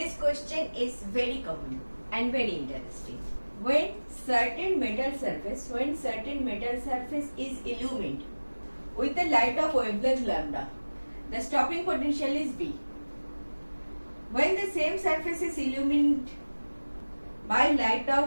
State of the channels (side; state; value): both; inverted; correlation -1.00